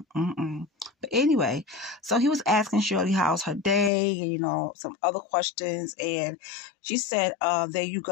anyway, so he was asking Shirley how's her day and, some other questions. And she said, there you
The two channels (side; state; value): right; drops out; at 3.9 s